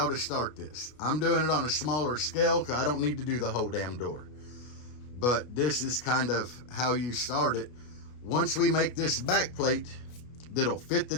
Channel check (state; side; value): late; right; 33 ms